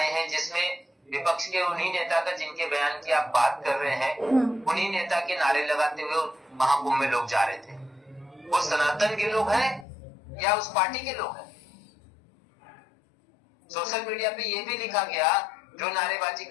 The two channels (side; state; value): right; drops out; at 9.9 s